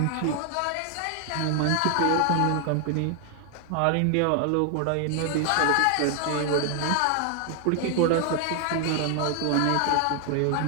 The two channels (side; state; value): both; different; correlation 0.00